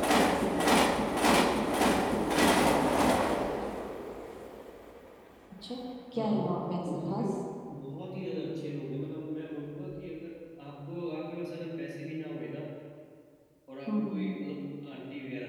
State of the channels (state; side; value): identical; both; correlation 1.00